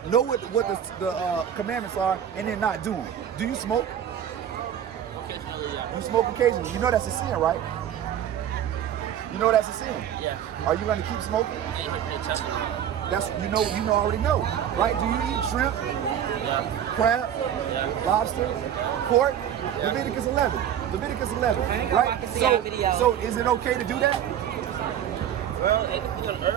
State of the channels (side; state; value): left; quieter; 9.8 dB